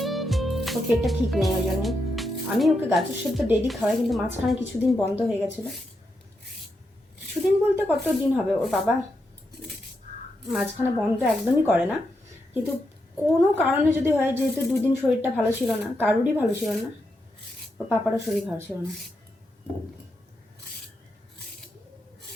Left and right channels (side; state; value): both; normal; correlation 0.84